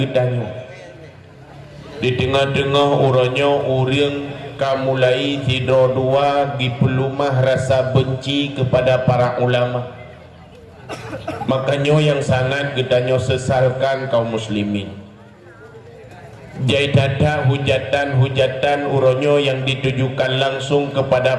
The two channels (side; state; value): both; identical; correlation 1.00